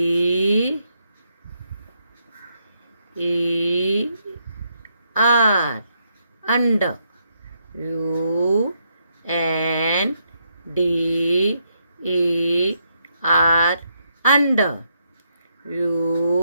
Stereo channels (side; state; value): both; inverted; correlation -0.77